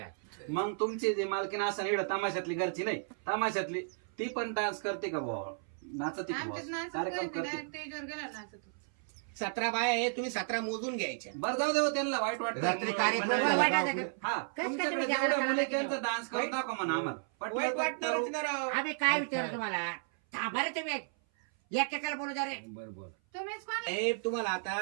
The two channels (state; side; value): silent; left; 55 dB below the other